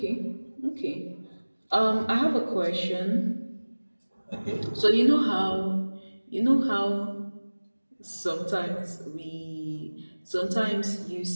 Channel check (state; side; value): inverted; both; correlation -1.00